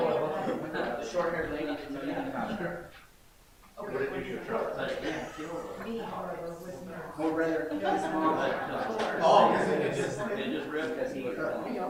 The short haired lady didn't know anything about her. What did you try? But it didn't kill her. Me, however, was not. Or rather, his mom. Oh, it just ripped because he was. Me,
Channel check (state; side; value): identical; both; correlation 1.00